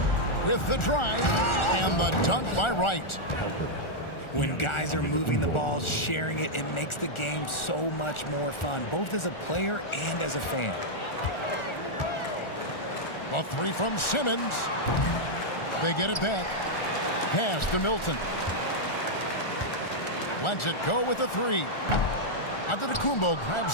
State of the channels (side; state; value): right; late; 1.4 ms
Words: with the drive and the dunk by Wright. When guys are moving the ball, sharing it, it makes the game so much more fun, both as a player and as a fan. A three from Simmons. They get it back. pass to Milton. Lets it go with a three. Antetokounmpo grabs